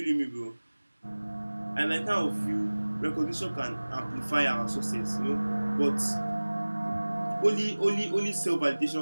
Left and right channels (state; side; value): inverted; both; correlation -1.00